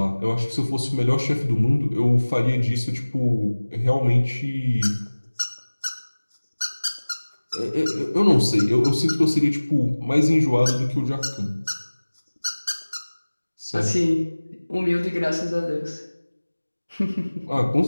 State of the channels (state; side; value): inverted; both; correlation -1.00